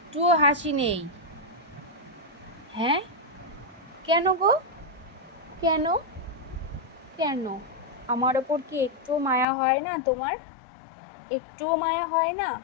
হাসি নেই। হ্যাঁ, কেন গো? কেন? কেন? আমার ওপর কি একটুও মায়া হয় না তোমার? একটুও মায়া হয় না?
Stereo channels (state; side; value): drops out; right; at 9.5 s